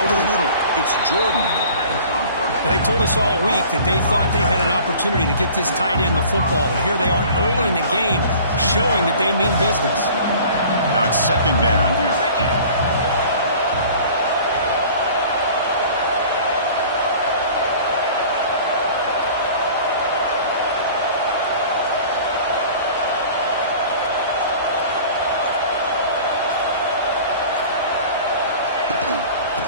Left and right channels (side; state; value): both; inverted; correlation -0.46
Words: over the middle. It's Jordan. They told us all week that they thought they had an opportunity to get this tight end the football, and here they are early in the game showing that they mean business. Now it's 2nd down here.